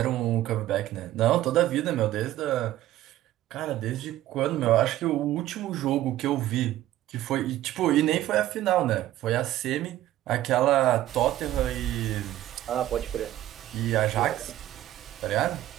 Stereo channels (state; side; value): quieter; left; 14.1 dB